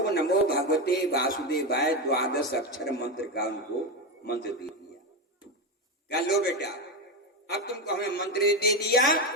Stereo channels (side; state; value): both; normal; correlation 0.13